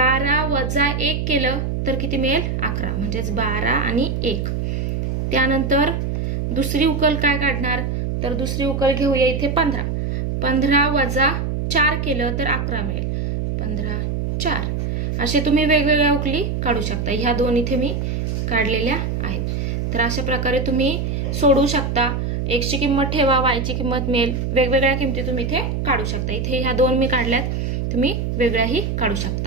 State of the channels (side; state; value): right; noise; hum, 1 dB below the sound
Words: वजा 1 केलं तर किती मिळेल 11, म्हणजेच 12 आणि 1. त्यानंतर दुसरी उकल काय काढणार, तर दुसरी उकल घेऊया इथे 15, 15 वजा 4 केलं तर 11 मिळेल, 15 4. असे तुम्ही वेगवेगळ्या उकली काढू शकता. ह्या दोन इथे मी काढलेल्या आहेत. तर अशा प्रकारे तुम्ही सोडवू शकता. x ची किंमत ठेवा, y ची किंमत मिळेल, वेगवेगळ्या किमती तुम्ही इथे काढू शकता. इथे ह्या दोन मी काढल्यात, तुम्ही वेगळ्याही काढू